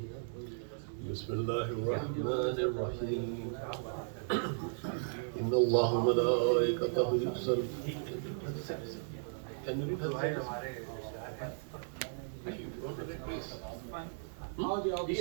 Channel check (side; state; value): left; silent; digital silence